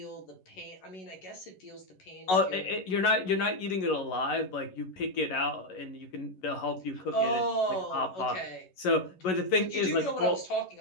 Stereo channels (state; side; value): late; right; 11 ms